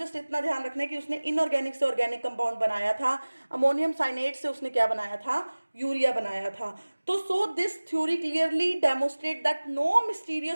इतना ध्यान रखना है कि उसने इनऑर्गेनिक से ऑर्गेनिक कंपाउंड बनाया था, अमोनियम साइनेट से उसने क्या बनाया था, यूरिया बनाया था। तो so this theory clearly demonstrate that no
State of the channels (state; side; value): inverted; both; correlation -1.00